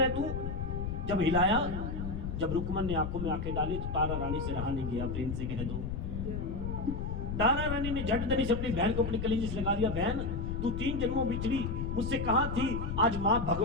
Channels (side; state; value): left; noise; rumble, 4 dB below the sound